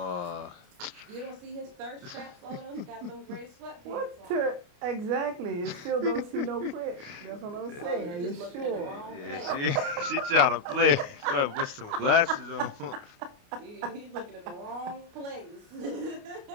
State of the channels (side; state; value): left; late; 29 ms